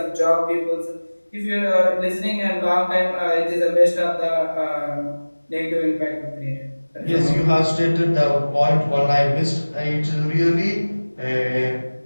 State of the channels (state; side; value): inverted; both; correlation -1.00